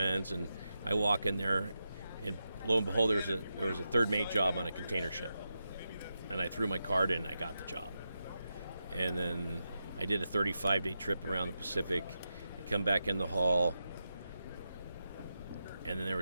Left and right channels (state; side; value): inverted; both; correlation -0.88